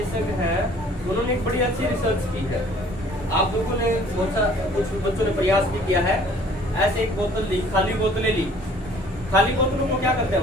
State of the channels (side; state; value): both; normal; correlation 0.54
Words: हैं उन्होंने एक बड़ी अच्छी रिसर्च की है। आप लोगों ने कुछ बच्चों ने प्रयास भी किया है। ऐसे एक बोतल ली, खाली बोतलें ली, खाली बोतलों को क्या करते हैं,